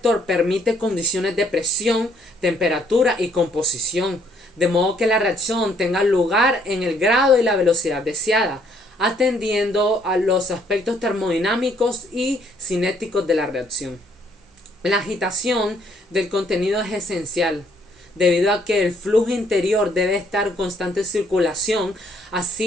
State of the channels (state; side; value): normal; both; correlation 0.66